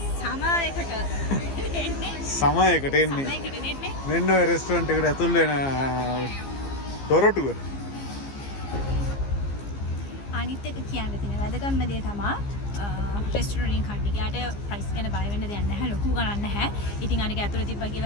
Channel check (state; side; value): late; right; 15 ms